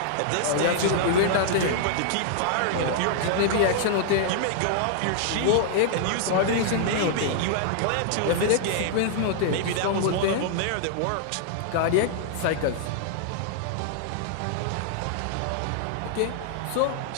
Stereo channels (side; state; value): both; different; correlation -0.01